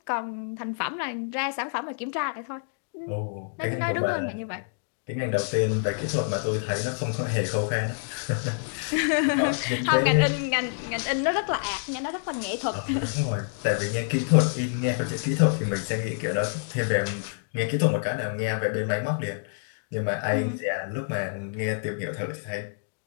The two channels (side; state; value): right; silent; digital silence